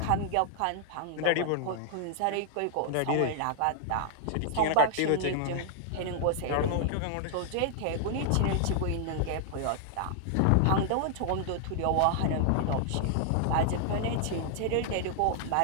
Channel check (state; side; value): different; both; correlation -0.01